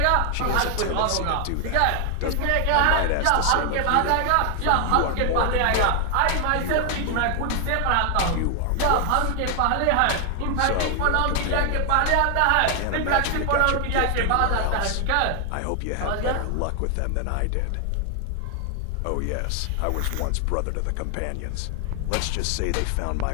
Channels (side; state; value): both; different; correlation 0.00